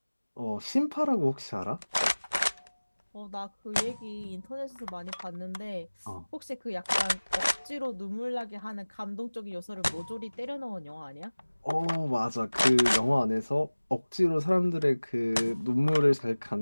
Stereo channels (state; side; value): inverted; both; correlation -1.00